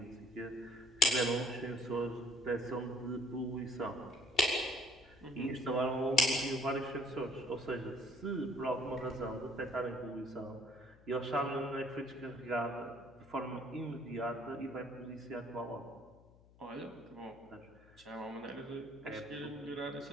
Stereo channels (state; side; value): noise; left; hum, 25 dB below the sound